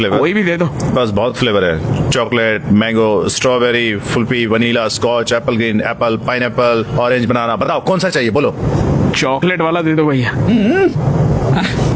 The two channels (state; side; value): identical; both; correlation 1.00